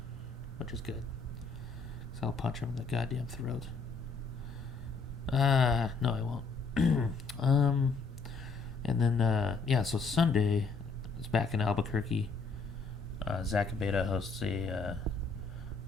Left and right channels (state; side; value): quieter; right; 4.3 dB